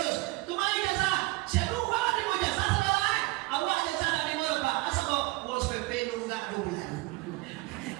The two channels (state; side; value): quieter; left; 21.3 dB